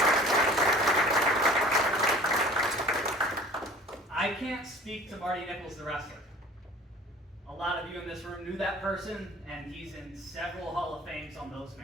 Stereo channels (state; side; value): normal; both; correlation 0.45